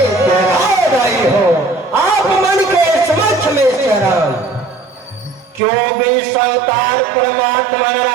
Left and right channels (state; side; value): drops out; left; at 5.6 s